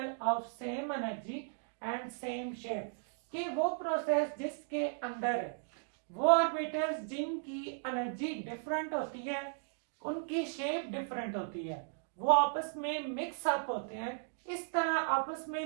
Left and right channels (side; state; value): left; silent; digital silence